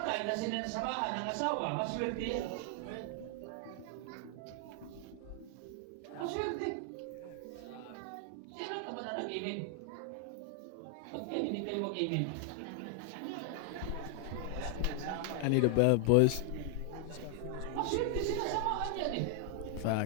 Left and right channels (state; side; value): different; both; correlation 0.00